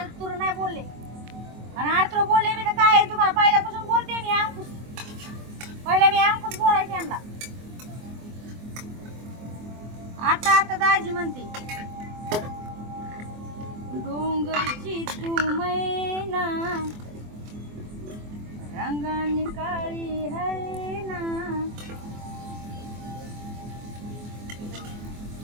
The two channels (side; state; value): left; late; 24 ms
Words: नाही बोलले आणि आरतुर बोलले मी तर काय तुम्हाला पहिल्यापासून बोलते मी अंकुश पहिला मी अंकुश बोलायचे यांना आता आता दाजी म्हणते डोंगरची तू मैना रंगाने काळी है ना